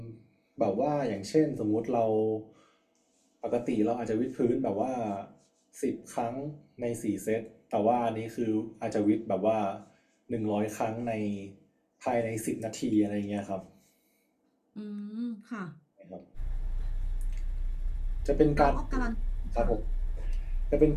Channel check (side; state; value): both; identical; correlation 1.00